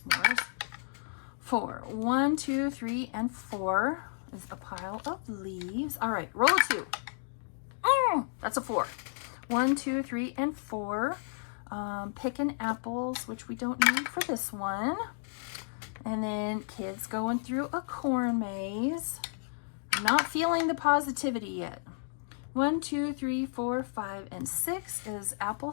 4. 1, 2, 3, and 4 is a pile of leaves. All right, roll a 2. That's a 4. 1, 2, 3, and 4. picking apples, which we don't need for this one. And then kids going through a corn maze. I'm not feeling the positivity yet. 1, 2, 3, 4, 5, and 6 is apple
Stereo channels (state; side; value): silent; right; digital silence